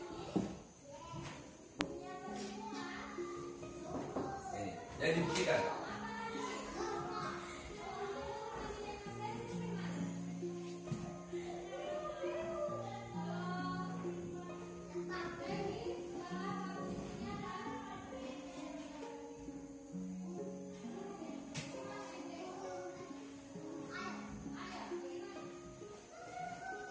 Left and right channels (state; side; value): identical; both; correlation 1.00